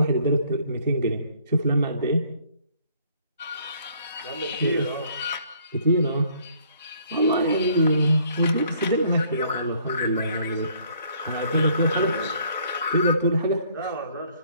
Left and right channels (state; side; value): inverted; both; correlation -0.62